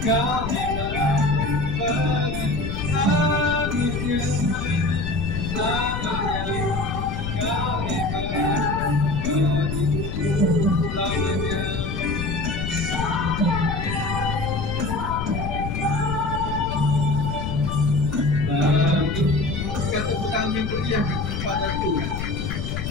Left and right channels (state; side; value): noise; left; rumble, 4 dB below the sound